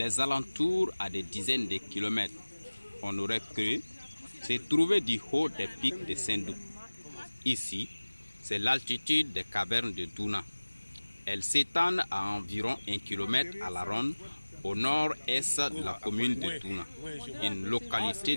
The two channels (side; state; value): both; inverted; correlation -1.00